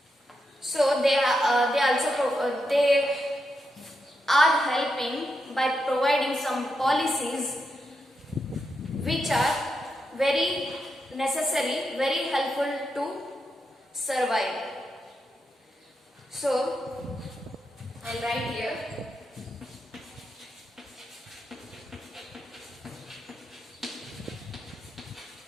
So they are helping by providing some policies which are very necessary, very helpful to survive. So I'll write here.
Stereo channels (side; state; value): both; normal; correlation 0.85